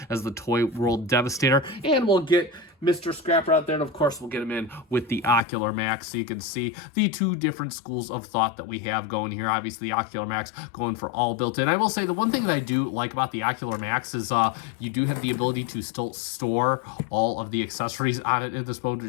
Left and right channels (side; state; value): right; drops out; at 5.4 s